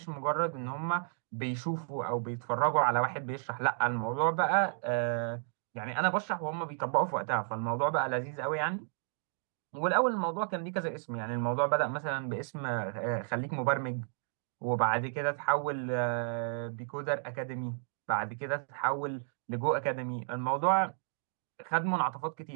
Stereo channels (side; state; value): left; silent; digital silence